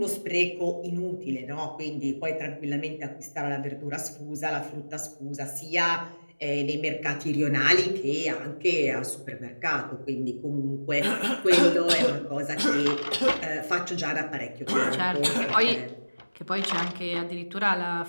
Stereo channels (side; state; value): both; inverted; correlation -1.00